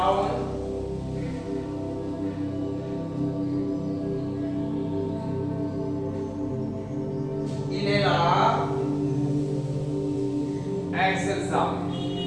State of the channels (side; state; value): both; identical; correlation 1.00